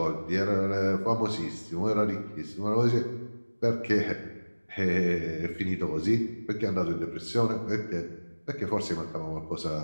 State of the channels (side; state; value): both; inverted; correlation -1.00